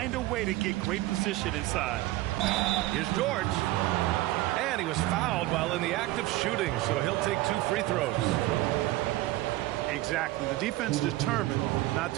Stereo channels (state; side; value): quieter; left; 17.5 dB